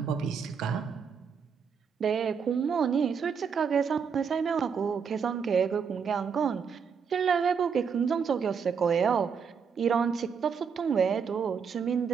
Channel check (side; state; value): left; quieter; 6.4 dB